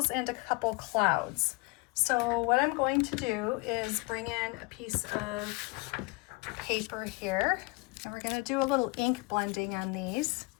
and a couple clouds. So what I'm going to do is bring in a piece of paper here, and we're going to do a little ink blending on these.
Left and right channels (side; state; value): right; quieter; 26.0 dB